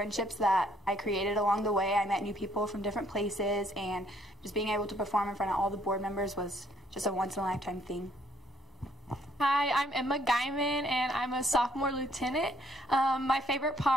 that I created along the way. I met new people from different places, and just being able to perform in front of all the board members was just a once-in-a-lifetime thing. Hi, I'm Emma Guyman, and I'm a sophomore lieutenant. My favorite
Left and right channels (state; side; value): normal; both; correlation 0.66